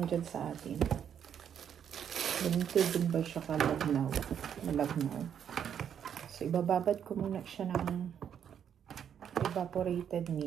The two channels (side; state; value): left; quieter; 8.6 dB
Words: dyan sa atin. Ganito din ba siya kalagnaw? Malagnaw. So, ibababad ko muna siya ng evaporated